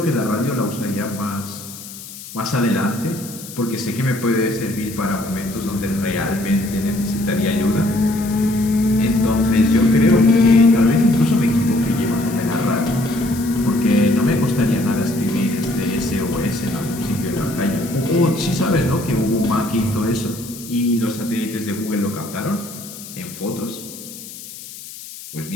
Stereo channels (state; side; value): noise; left; hiss, 14 dB below the sound